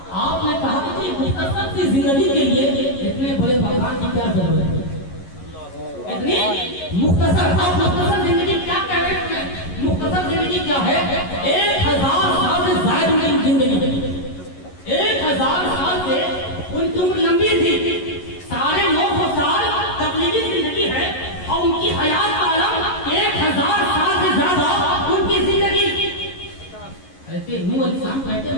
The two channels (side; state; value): right; late; 11 ms